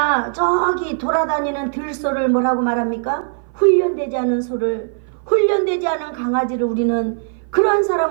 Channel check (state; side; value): silent; left; 57 dB below the other